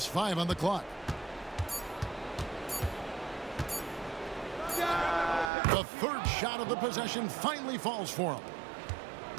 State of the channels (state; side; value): drops out; left; at 5.5 s